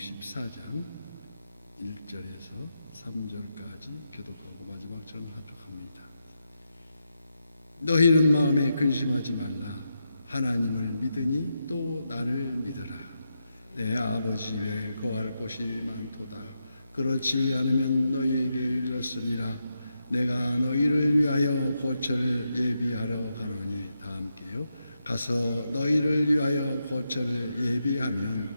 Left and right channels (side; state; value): both; inverted; correlation -0.85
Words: 1절에서 3절까지 교독하고 마지막 절은 합독합니다. 너희는 마음에 근심하지 말라. 하나님을 믿으니 또 나를 믿으라. 내 아버지 집에 거할 곳이 많도다. 그렇지 않으면 너희에게 이르렀으리라. 내가 너희를 위하여 거처를 예비하러 가노니 다 함께요. 가서 너희를 위하여 거처를 예비하면